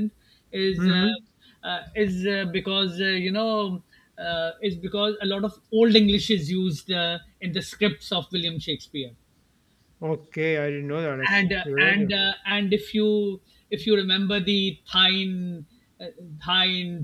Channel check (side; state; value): both; identical; correlation 1.00